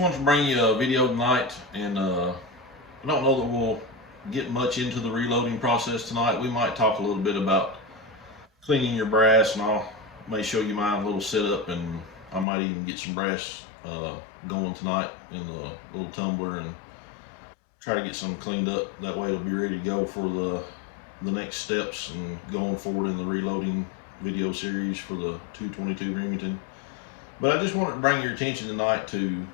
to bring you a video tonight, and I don't know that we'll get much into the reloading process tonight. We might talk a little bit about cleaning your brass, and I may show you my little setup, and I might even get some brass going tonight in the little tumbler and try to get some cleaned up. That way it'll be ready to go for the next steps and going forward in the reloading video series for the 222 Remington. But I just wanted to bring your attention tonight to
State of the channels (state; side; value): drops out; right; at 12.5 s